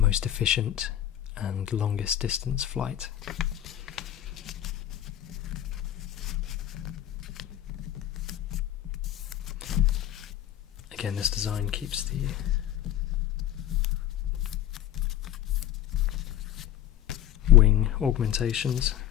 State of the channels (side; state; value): right; quieter; 12.0 dB